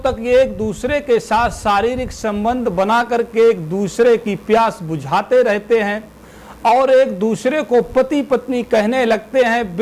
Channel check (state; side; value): identical; both; correlation 1.00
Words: ये एक दूसरे के साथ शारीरिक संबंध बना करके एक दूसरे की प्यास बुझाते रहते हैं और एक दूसरे को पति पत्नी कहने लगते हैं,